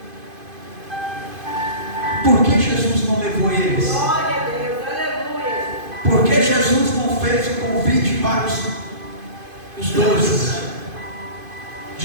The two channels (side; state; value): left; late; 2.5 ms